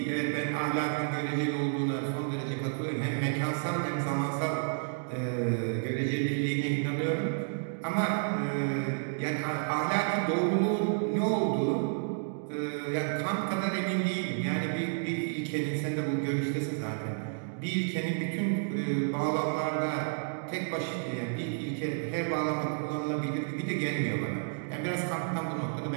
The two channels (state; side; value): silent; left; digital silence